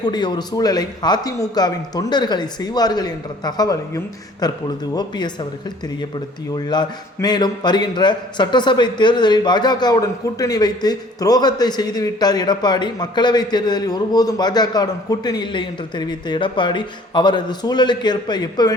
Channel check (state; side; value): normal; both; correlation 0.54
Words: ஒரு சூழலை அதிமுகவின் தொண்டர்களை செய்வார்கள் என்ற தகவலையும் தற்பொழுது ஓபிஎஸ் அவர்கள் தெரியப்படுத்தியுள்ளார். மேலும் வருகின்ற சட்டசபை தேர்தலில் பாஜகவுடன் கூட்டணி வைத்து துரோகத்தை செய்துவிட்டார் எடப்பாடி. மக்களவை தேர்தலில் ஒருபோதும் பாஜகவுடன் கூட்டணி இல்லை என்று தெரிவித்த எடப்பாடி அவரது சூழலுக்கு ஏற்ப